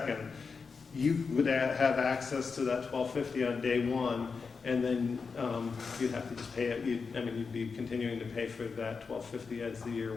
you would have access to that $1,250 on day one, and then you'd have to just pay it. You'd be continuing to pay for that $1,250 as the year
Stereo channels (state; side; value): quieter; right; 5.1 dB